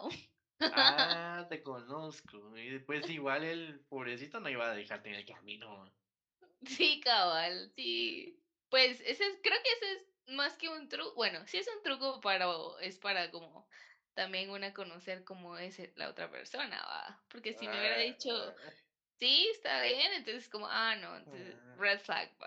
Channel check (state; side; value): identical; both; correlation 1.00